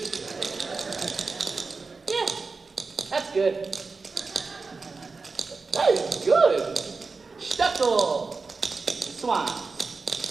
Yeah, that's good. That is good. Stuckle. Swan.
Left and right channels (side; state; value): left; quieter; 4.3 dB